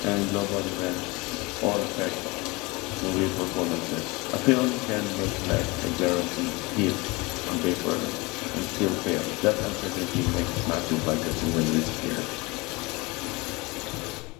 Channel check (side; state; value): right; quieter; 24.9 dB